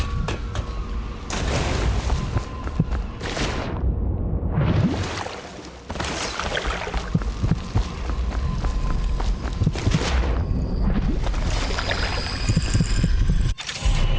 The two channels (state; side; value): identical; both; correlation 1.00